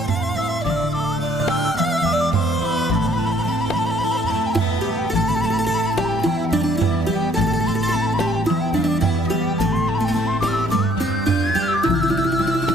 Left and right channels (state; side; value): normal; both; correlation 0.62